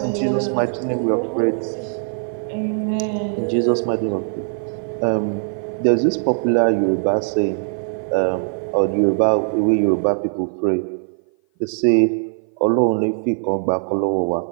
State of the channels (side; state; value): left; silent; 56 dB below the other